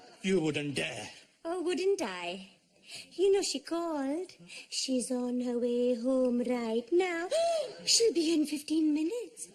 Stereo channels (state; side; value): identical; both; correlation 1.00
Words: You wouldn't dare. Oh, wouldn't I? You know, she called. She's on her way home right now. She'll be in 15 minutes.